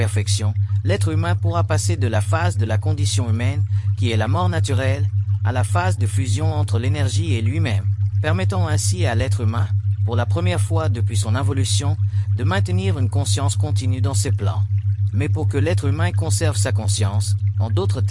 l'être humain pourra passer de la phase de la condition humaine, qui est la mort naturelle, à la phase de fusion entre l'énergie et lui-même, permettant ainsi à l'être humain, pour la première fois depuis son involution, de maintenir une conscience continue dans ses plans. Mais pour que l'être humain conserve sa conscience, en d'autres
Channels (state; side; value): identical; both; correlation 1.00